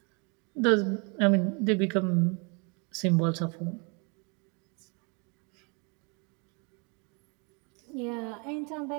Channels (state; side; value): quieter; left; 33.1 dB